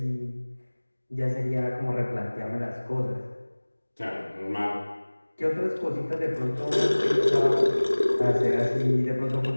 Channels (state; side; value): inverted; both; correlation -1.00